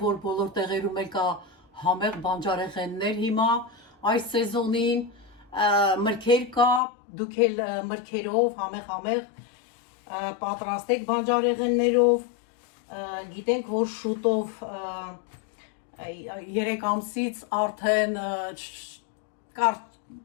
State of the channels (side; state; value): right; drops out; at 6.8 s